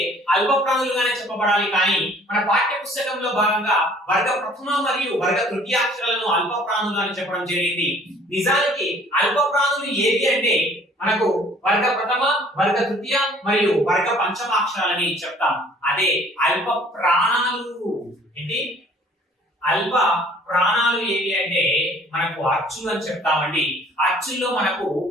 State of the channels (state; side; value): normal; both; correlation 0.55